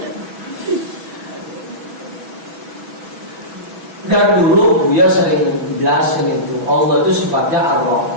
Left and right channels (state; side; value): late; left; 6.1 ms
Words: Dari dulu Buya sering jelasin itu, Allah itu sifatnya